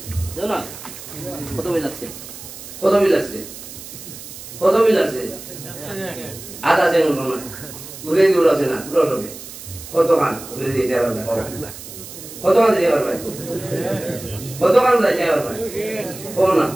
দেও না কত বিল লাগছে কত বিল লাগছে কত বিল আছে আধা আছে না উড়ে দূর আছে না পুরো সবে কত খান উড়ে দিয়ে দেওয়ার কত খান দিয়ে পারবে কত খান দিয়ে পারবে কোন না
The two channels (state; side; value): noise; right; hiss, 13 dB below the sound